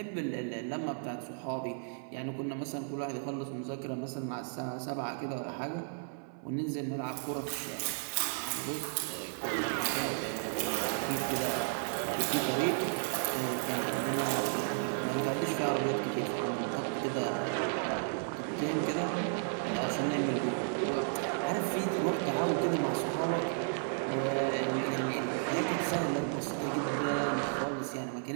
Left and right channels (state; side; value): silent; left; 55 dB below the other